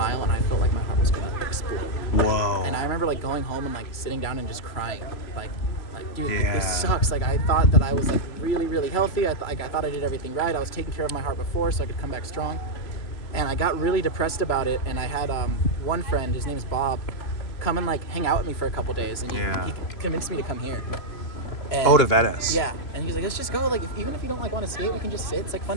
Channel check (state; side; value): late; right; 3.0 ms